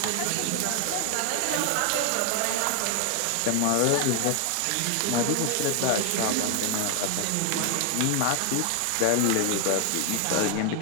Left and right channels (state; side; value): different; both; correlation 0.00